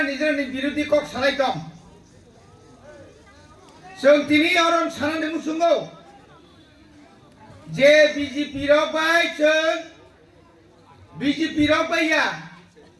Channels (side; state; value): both; identical; correlation 1.00